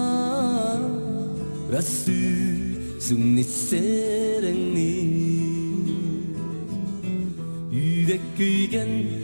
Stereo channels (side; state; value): both; inverted; correlation -1.00